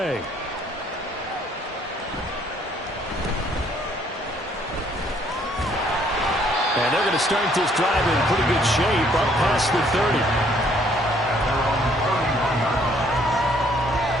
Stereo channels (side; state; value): both; normal; correlation 0.64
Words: And they're going to start this drive in pretty good shape up past the 30.